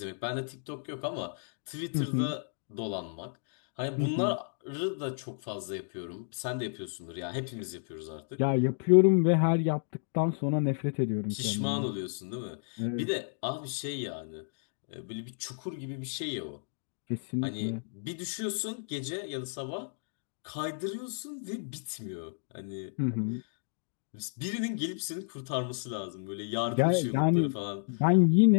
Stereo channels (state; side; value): silent; right; digital silence